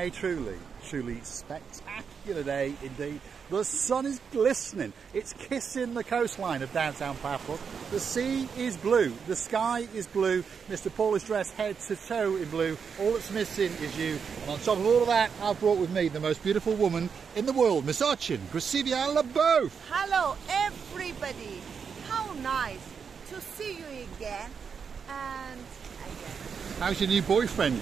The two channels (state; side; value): quieter; left; 6.4 dB